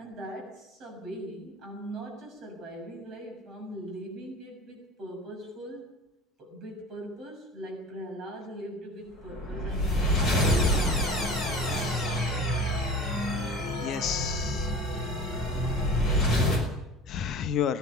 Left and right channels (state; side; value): normal; both; correlation 0.37